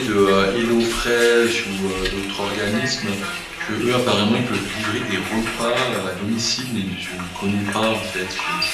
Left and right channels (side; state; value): both; identical; correlation 1.00